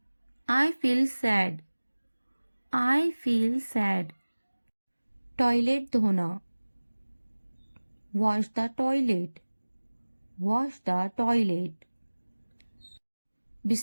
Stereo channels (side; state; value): both; inverted; correlation -1.00